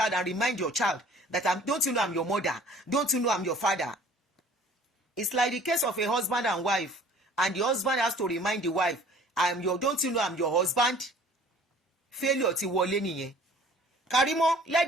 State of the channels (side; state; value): both; normal; correlation 0.51